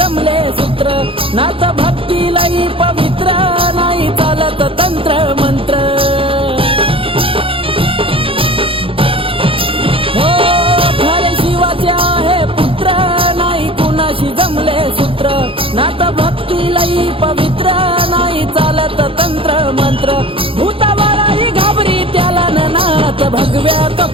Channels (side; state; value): left; late; 0.26 ms